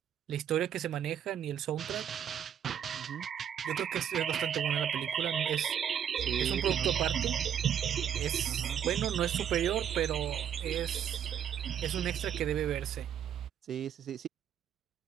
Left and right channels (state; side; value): quieter; left; 9.1 dB